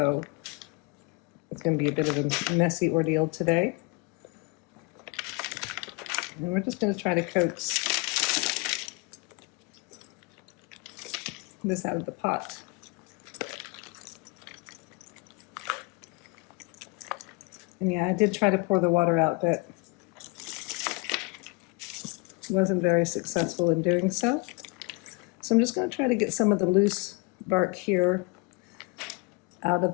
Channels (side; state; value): right; quieter; 28.9 dB